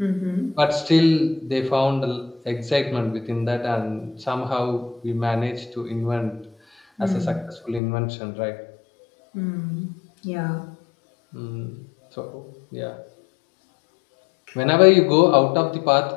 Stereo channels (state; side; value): drops out; right; at 7.8 s